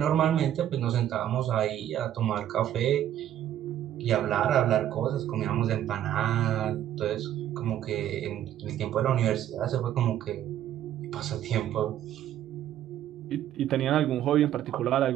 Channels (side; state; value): left; quieter; 11.5 dB